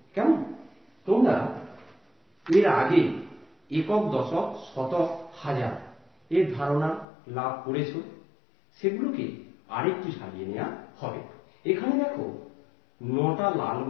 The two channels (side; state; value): right; drops out; at 7.1 s